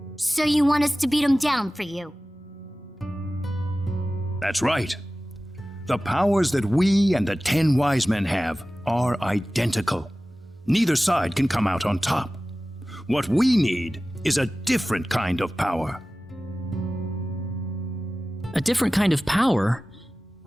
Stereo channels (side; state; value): both; normal; correlation 0.96